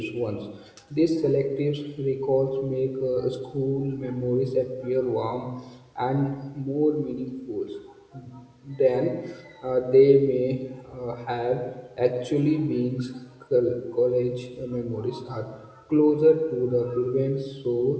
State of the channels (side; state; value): both; identical; correlation 1.00